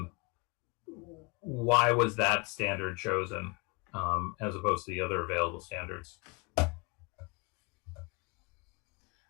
Why was that standard chosen as opposed to the other available standards?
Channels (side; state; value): right; quieter; 29.3 dB